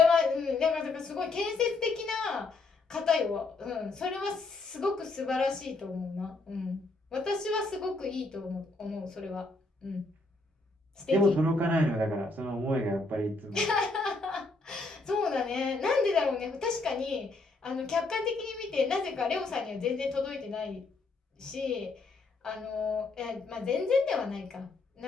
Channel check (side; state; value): right; quieter; 3.4 dB